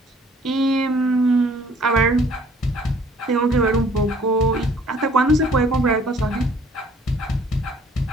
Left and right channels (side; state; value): both; normal; correlation 0.57